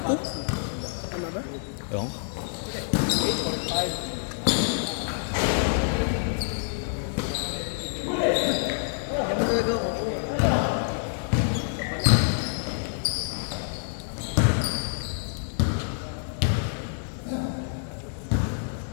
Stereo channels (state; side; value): silent; right; 60 dB below the other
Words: Tama ba? Yung.